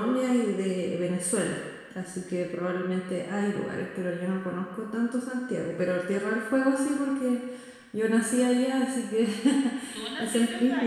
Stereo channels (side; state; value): both; identical; correlation 1.00